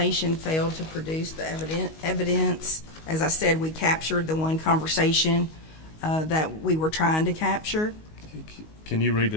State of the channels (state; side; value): late; right; 19 ms